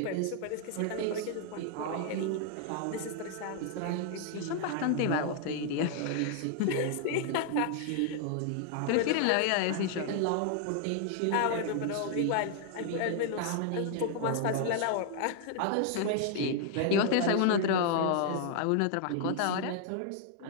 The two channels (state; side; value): different; both; correlation 0.00